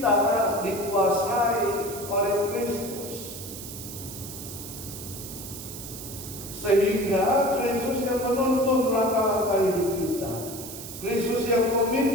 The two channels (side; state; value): right; noise; hiss, 11 dB below the sound